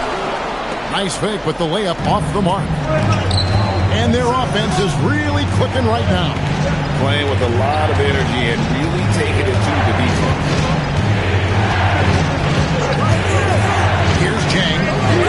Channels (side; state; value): both; identical; correlation 1.00